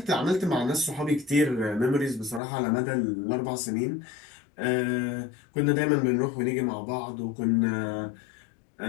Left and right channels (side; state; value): right; drops out; at 2.4 s